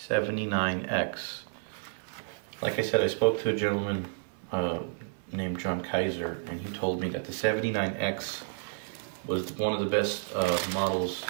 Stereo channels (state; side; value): silent; left; digital silence